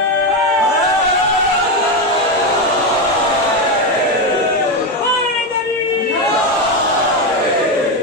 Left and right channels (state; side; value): normal; both; correlation 0.11